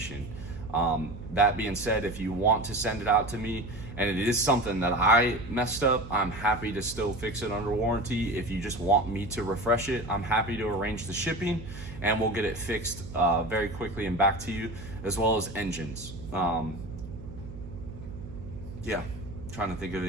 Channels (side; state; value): right; noise; hum, 12 dB below the sound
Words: That being said, if you want to send it out to me and it is something that I messed up, I'm happy to still fix it under warranty. If you just want me to refresh it, I'm happy to arrange the shipping and we'll get it fixed very quickly and back to you, as well as engines. Yeah, trying to think of